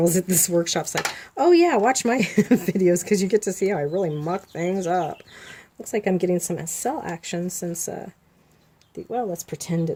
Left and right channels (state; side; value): identical; both; correlation 1.00